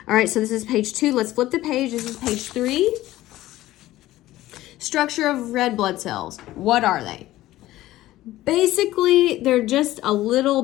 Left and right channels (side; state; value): right; quieter; 15.7 dB